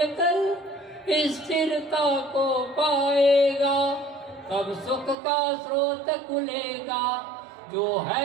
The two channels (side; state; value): left; drops out; at 5.2 s